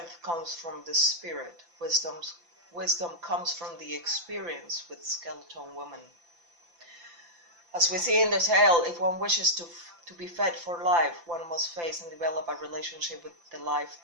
comes from the spirit. Wisdom comes from the experience with skeleton women. As we see in the tale, if one wishes to be fed for life, one must face and develop a relationship with the life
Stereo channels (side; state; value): left; late; 5.9 ms